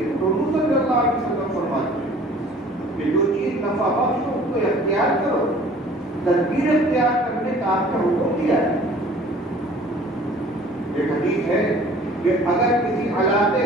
تو حضور صلی اللہ علیہ وسلم فرماتے ہیں کہ جو چیز نفع بخش ہو اس کو اختیار کرو، تدبیر اختیار کرنے کا آپ کا حکم دیا ہے۔ ایک حدیث ہے کہ اگر کسی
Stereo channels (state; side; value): normal; both; correlation 0.50